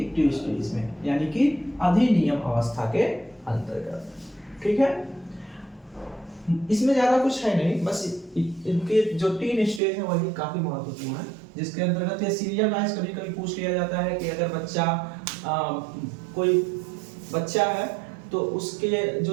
स्टेज में, यानी कि अधिनियम अवस्था के अंतर्गत। ठीक है, इसमें ज्यादा कुछ है नहीं, बस इनके जो 3 स्टेज है वही काफी महत्वपूर्ण है, जिसके अंतर्गत ये सीरियल वाइज कभी कभी पूछ लिया जाता है कि अगर बच्चा कोई बच्चा है तो उसके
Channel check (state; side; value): drops out; left; at 9.8 s